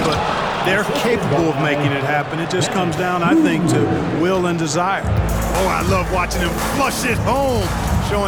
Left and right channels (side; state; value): both; identical; correlation 1.00